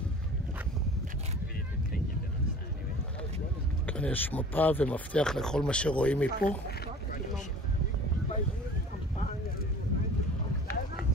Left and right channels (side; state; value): both; normal; correlation 0.44